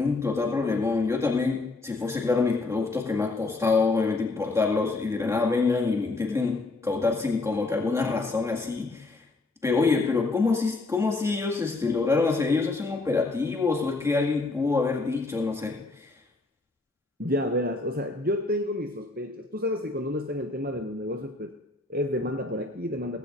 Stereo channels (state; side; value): quieter; right; 3.4 dB